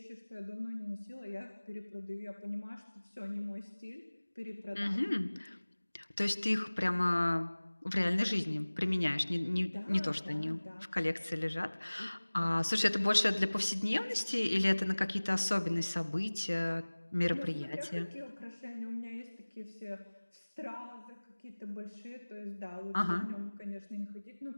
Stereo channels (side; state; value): both; inverted; correlation -1.00